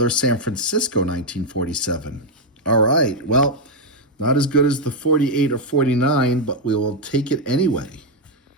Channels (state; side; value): normal; both; correlation 0.01